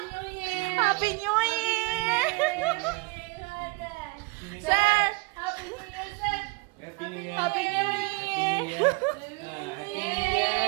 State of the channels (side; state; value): left; quieter; 26.1 dB